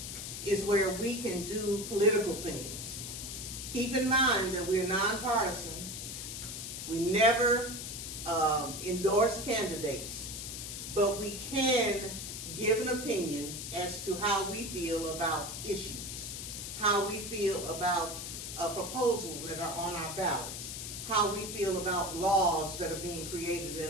is where we can do political things. Keep in mind that we're nonpartisan. We never endorse candidates, but we can give an opinion as to how we feel about issues, how we feel about proposals that are on our ballots, how we feel about laws that are being created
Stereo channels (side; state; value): left; noise; hiss, 7 dB below the sound